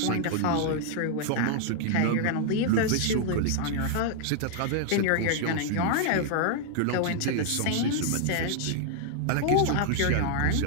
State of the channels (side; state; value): both; different; correlation 0.00